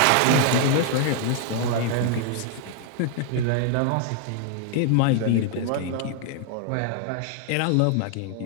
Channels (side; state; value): both; different; correlation 0.00